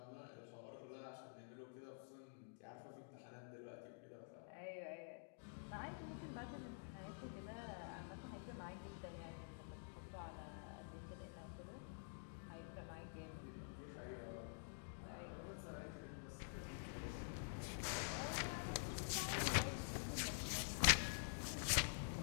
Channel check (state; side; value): silent; right; digital silence